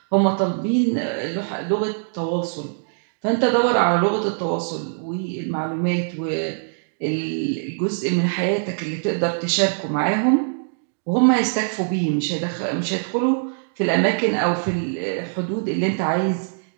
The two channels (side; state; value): left; silent; digital silence